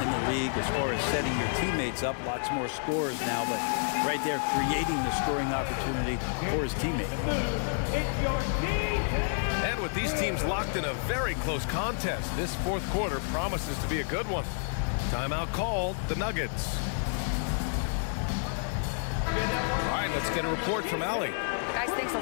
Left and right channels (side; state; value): right; silent; digital silence